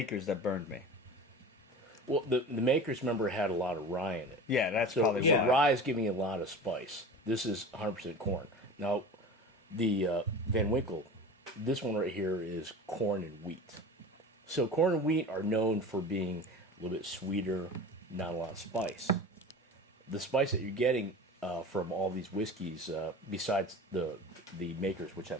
that burned me. Well, the makers, remember, had a lot of rye in it. Yeah, that's So probably why. rye is giving you a lot of spice. This is 100% corn. Now, the Van Winkle, this one right here is corn and wheat. So corn and wheat are known for being a little bit sweeter, not a lot of spice. The spice that you're getting from all these whiskeys, besides the makers, which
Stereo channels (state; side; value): normal; both; correlation 0.34